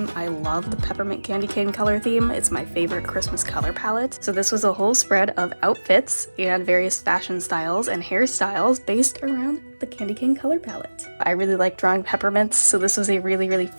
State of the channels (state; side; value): inverted; both; correlation -1.00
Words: I love the peppermint candy cane color theme. It's my favorite Christmas color palette. So this was a whole spread of outfits and various fashion styles and hairstyles based around the candy cane color palette. I really like drawing peppermints, so this was a really